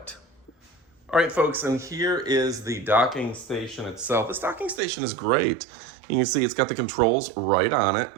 All right, folks, and here is the docking station itself. This docking station is great. You can see it's got the controls right on it.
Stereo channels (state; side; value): drops out; left; at 4.8 s